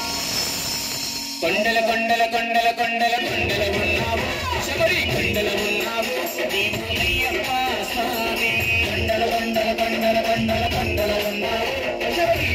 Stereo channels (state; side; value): identical; both; correlation 1.00